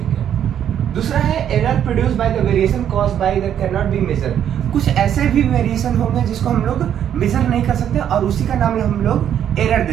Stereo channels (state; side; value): quieter; left; 9.7 dB